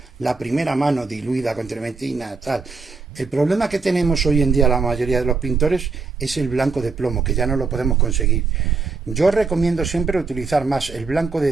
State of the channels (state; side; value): quieter; left; 4.5 dB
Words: la primera mano diluida con trementina, tal. El problema que tenemos hoy en día la mayoría de los pintores es el blanco de plomo, que ya no lo podemos conseguir. Yo recomiendo siempre utilizar más el blanco